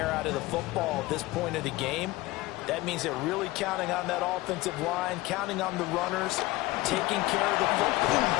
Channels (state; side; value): quieter; right; 19.2 dB